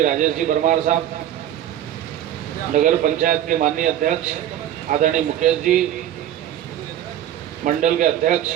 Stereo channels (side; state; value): left; quieter; 11.5 dB